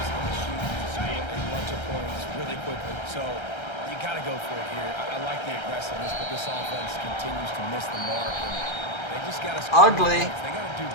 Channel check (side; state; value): right; late; 1.3 ms